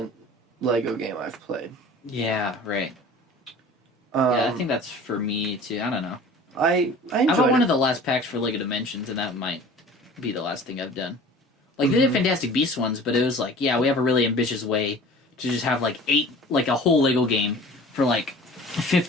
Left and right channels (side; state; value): both; normal; correlation 0.44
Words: Lego game I've played. Yeah, right. Yeah, I think that's for me too. I don't know. I enjoyed I bought one it. of the last packs for Lego Dimensions, and that might be the last thing I've done. Like, they did Fantastic Beasts ones, but it was like, yeah, we have a really ambitious way to just have like a whole Lego game for like